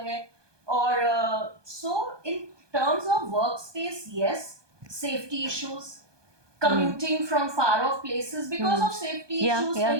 है और so in terms of work space yes safety issues commuting from far off places because of safety issues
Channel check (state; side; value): late; left; 1.2 ms